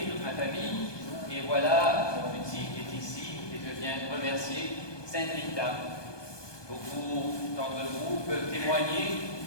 toute ma famille, et voilà, mon petit est ici, et je viens remercier Saint Rita. Beaucoup d'entre vous peuvent témoigner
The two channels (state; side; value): late; right; 1.2 ms